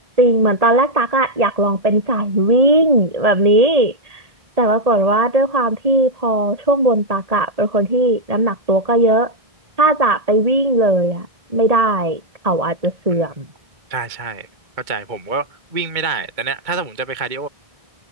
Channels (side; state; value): left; late; 2.2 ms